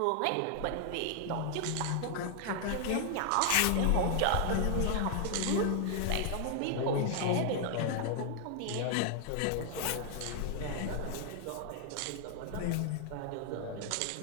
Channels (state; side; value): different; both; correlation 0.00